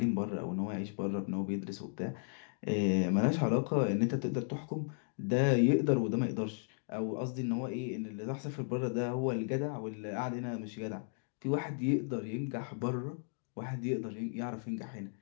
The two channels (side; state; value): right; silent; 54 dB below the other